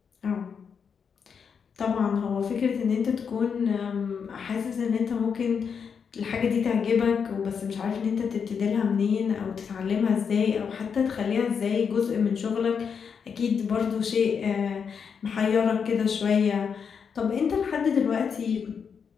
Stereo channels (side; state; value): right; quieter; 6.5 dB